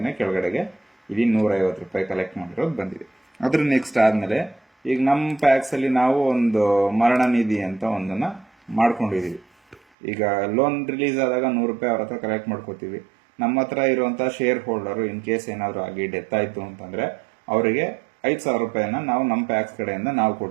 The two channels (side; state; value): left; drops out; at 9.8 s